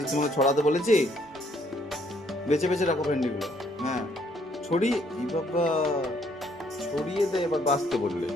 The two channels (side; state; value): both; normal; correlation 0.67